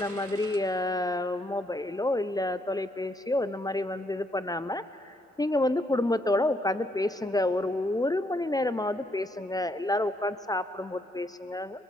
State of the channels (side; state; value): both; normal; correlation 0.73